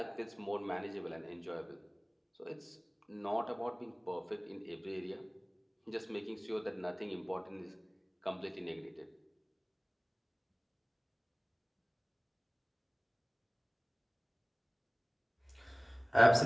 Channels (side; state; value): both; identical; correlation 1.00